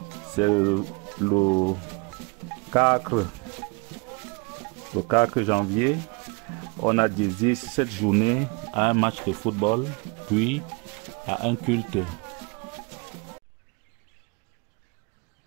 c'est le 4 janvier. On a dédié cette journée à un match de football, puis à un culte.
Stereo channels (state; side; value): quieter; left; 30.8 dB